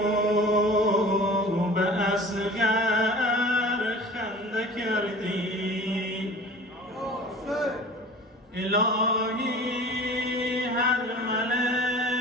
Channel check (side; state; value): both; normal; correlation 0.41